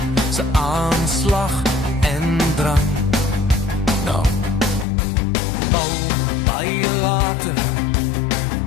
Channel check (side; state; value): right; drops out; at 4.9 s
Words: se aanslag en drang. Nou, al baie later